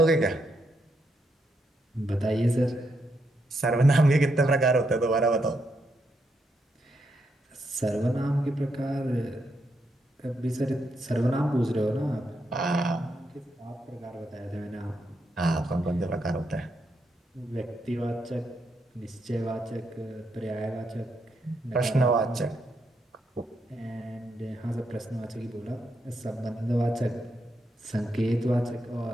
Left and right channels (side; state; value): both; normal; correlation 0.80